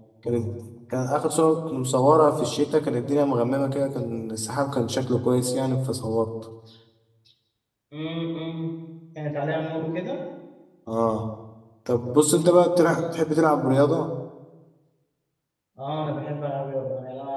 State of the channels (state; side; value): identical; both; correlation 1.00